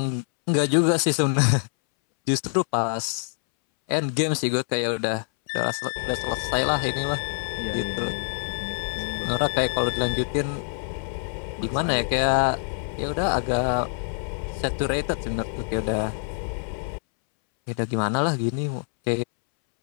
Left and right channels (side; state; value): right; silent; 61 dB below the other